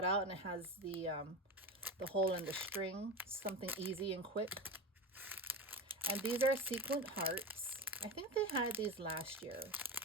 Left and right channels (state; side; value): normal; both; correlation 0.24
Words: out, and it has the hole in the string, something easy and quick. And these are sequin hearts. I think they had these last year,